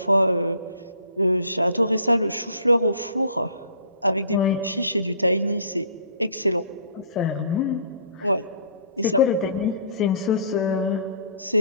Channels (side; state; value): both; inverted; correlation -0.53